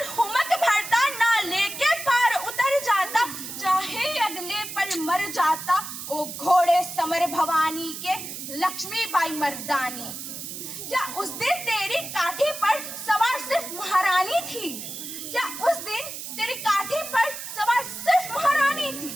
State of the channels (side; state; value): right; noise; hiss, 8 dB below the sound